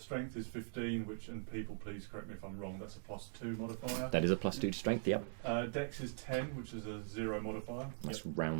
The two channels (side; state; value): left; silent; digital silence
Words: is 15, which, and people please correct me if I'm wrong, that's a +2 modifier. That is a +2 to strength. Yep. Dex is 10, which is a 0 modifier. That's